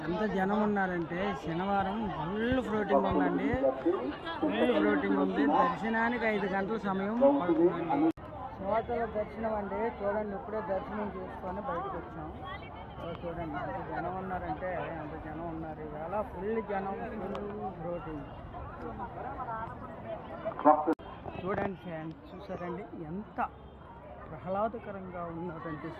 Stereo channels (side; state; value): both; identical; correlation 1.00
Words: ఎంత జనం ఉన్నారంటే శనివారం ఫుల్ ఫ్లోటింగ్ ఉందండి. ఫుల్ ఫ్లోటింగ్ ఉంది. దర్శనానికి 5 గంటల సమయం పడుతుందండి. సింహాచల దర్శనం అండి. చూడండి, ఇప్పుడే దర్శనం చేసుకొని బయటకు వచ్చాం. చూడండి ఎంత జనం ఉన్నారంటే అంత జనం ఉన్నారు. ఇవాళ ఫుల్ జనం, ఫుల్ ఫ్లోటింగ్. చూడండి ఫ్రెండ్స్, చూసారండి ఎంత ప్రహ్లాదకరంగా ఉన్నటువంటి